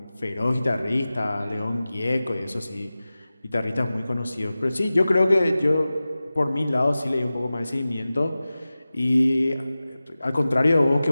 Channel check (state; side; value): inverted; both; correlation -0.96